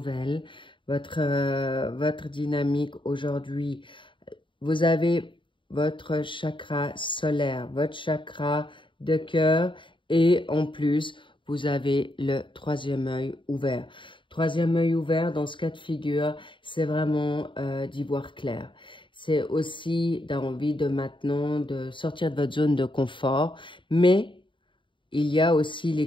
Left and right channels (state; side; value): late; right; 0.24 ms